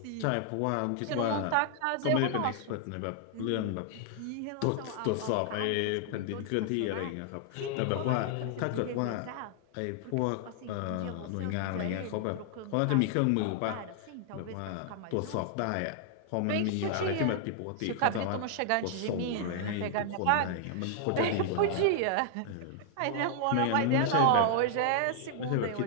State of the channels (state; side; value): different; both; correlation 0.00